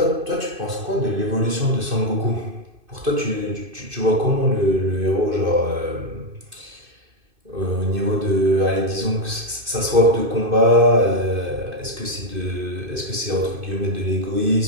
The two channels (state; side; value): late; left; 2.5 ms